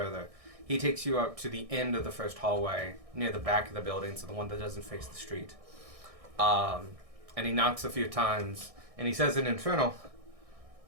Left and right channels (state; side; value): late; left; 1.6 ms